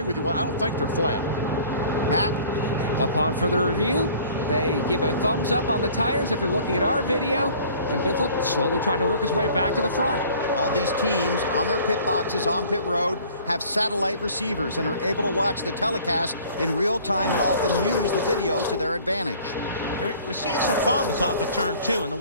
with you. I don't think they're flat. Matt? Upon further review, they give a thumbs up on the tires if you're looking at our video. And Biffle slowly trying to work his way back to the front. All these teams on their pit boxes on pit road have satellite receivers and are able to watch the telecast in real time and often use the video to their advantage. We're seeing some problems off of turn 2, and the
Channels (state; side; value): inverted; both; correlation -0.51